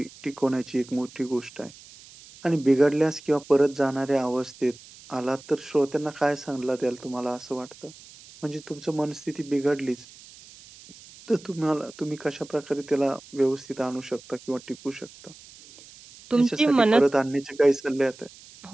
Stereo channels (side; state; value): right; noise; hiss, 21 dB below the sound